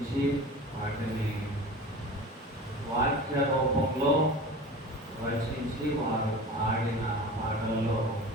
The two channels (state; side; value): normal; both; correlation 0.36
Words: వాటిని వాక్య రూపంలో రచించి వారు పాడిన పాటలలో